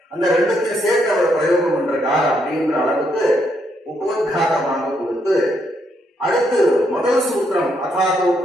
அந்த 2த்தையும் சேர்த்து அவர் பிரயோகம் பண்றார் அப்படின்ற அளவுக்கு உபோத்காரமாக கொடுத்து, அடுத்து முதல் சூத்திரம் அதாதோ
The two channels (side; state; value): both; normal; correlation 0.75